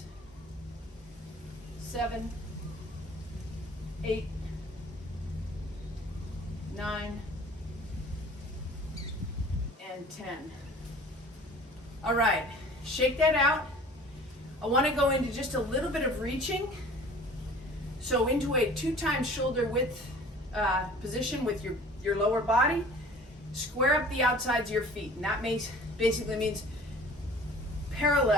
7, 8, 9, and 10. All right, shake that out. I want to go into just a little bit of reaching. So into a 2 times shoulder width position with your lower body. Square up the outsides of your feet, and that basically means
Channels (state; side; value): normal; both; correlation 0.47